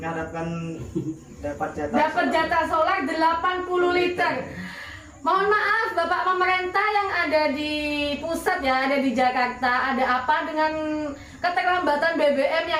dapat jatah solar 80 liter. Mohon maaf Bapak pemerintah yang ada di pusat ya, ada di Jakarta, ada apa dengan keterlambatan BBM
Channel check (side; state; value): both; identical; correlation 1.00